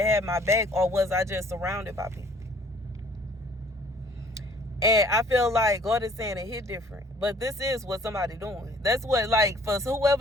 had my back, or was I just surrounded by people? And I feel like God is saying it hit different. But this is what somebody doing. That's what, like, for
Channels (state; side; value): normal; both; correlation 0.57